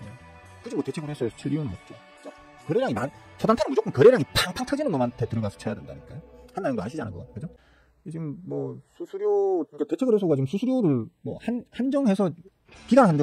굳이 뭐 대체거래소에서 칠 이유는 없죠. 거래량이 초단타는 무조건 거래량이 팡팡 터지는 놈한테 들어가서 쳐야 된다니까요. 한다는 거 아시잖아요, 그거. 그죠? 지금 뭐 수수료, 그러니까 대체거래소가 지금 수수료를 뭐 한정해서 기간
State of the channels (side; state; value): both; identical; correlation 1.00